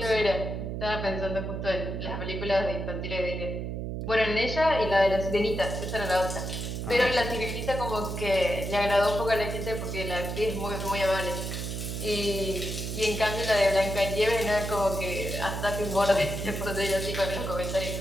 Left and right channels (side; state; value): right; noise; hum, 4 dB below the sound